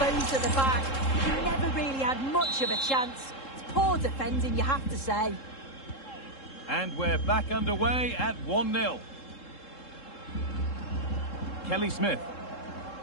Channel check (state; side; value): late; right; 3.7 ms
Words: at the back. He never really had much of a chance. It's poor defending, you have to say. And we're back underway at 1-0. Kelly Smith.